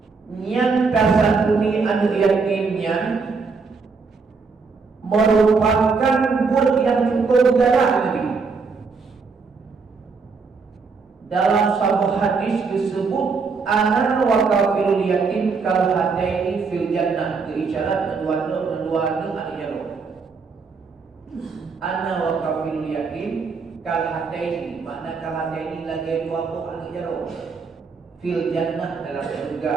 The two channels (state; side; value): quieter; left; 4.8 dB